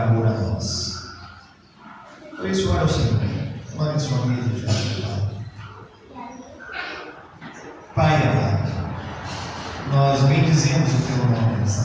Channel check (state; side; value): identical; both; correlation 1.00